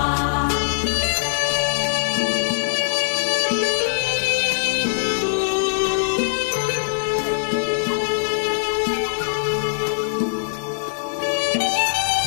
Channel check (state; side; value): silent; right; digital silence